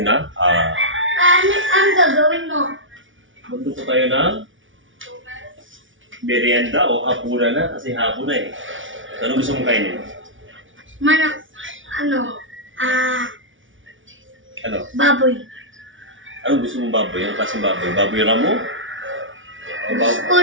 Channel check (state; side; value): late; left; 0.56 ms